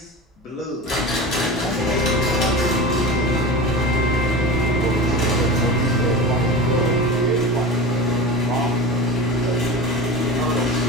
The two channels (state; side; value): normal; both; correlation 0.31